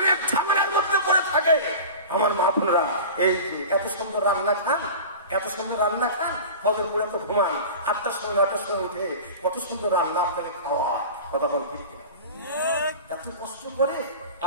ঝামেলার মধ্যে করে থাকে। আমার মা বোনেরা এই যে এত সুন্দর রান্না খান, এত সুন্দর রান্না খান, ফজর পড়ে তো ঘুমান, 8টার সময় 9টার সময় উঠে কত সুন্দর রান্না আপনাকে খাওয়া। কথা বল ঠিক কিনা? এত কষ্ট করে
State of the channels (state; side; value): inverted; both; correlation -0.34